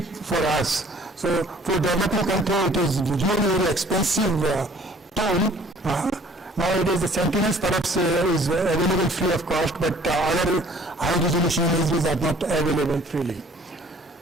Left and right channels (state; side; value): normal; both; correlation 0.55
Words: for us. So for developing country, it is really very expensive tool. Nowadays, the Sentinels perhaps is available free of cost, but other high-resolution images are not available freely.